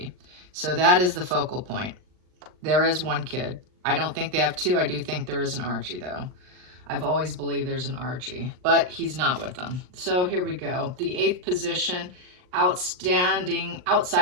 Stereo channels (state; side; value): late; left; 39 ms